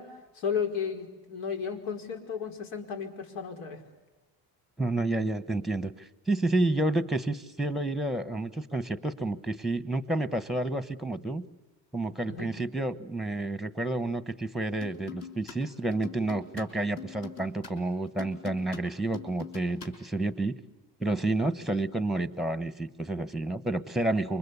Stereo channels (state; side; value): normal; both; correlation 0.74